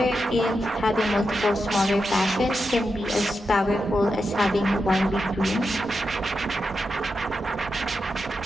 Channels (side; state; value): both; normal; correlation 0.88